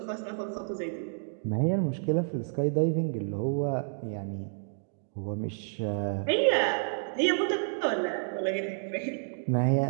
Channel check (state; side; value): silent; left; digital silence